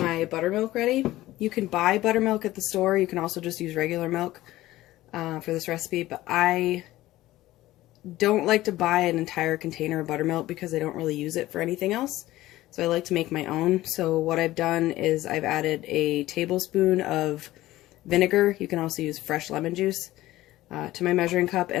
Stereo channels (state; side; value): quieter; right; 16.3 dB